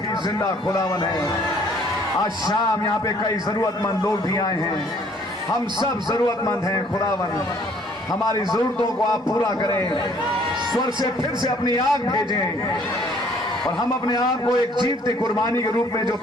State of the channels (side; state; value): both; normal; correlation 0.59